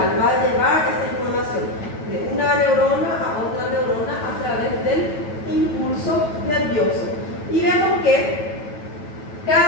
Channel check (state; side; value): late; right; 9.2 ms